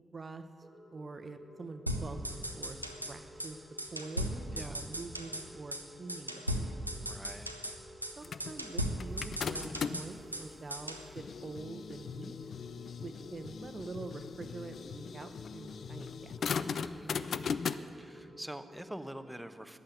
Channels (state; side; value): normal; both; correlation 0.40